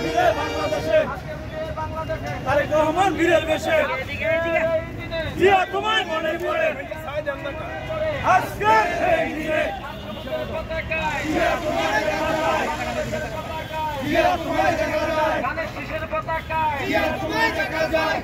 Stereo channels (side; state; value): both; identical; correlation 1.00